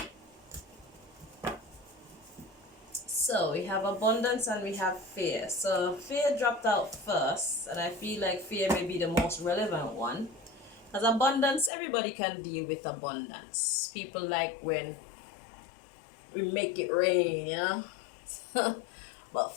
So we have abundance and we have fear. So fear dropped out first, and I feel like fear may be the most relevant one. Because abundance, everybody can deal with abundance. People like when we make it rain, you know. But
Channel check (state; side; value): drops out; right; at 11.7 s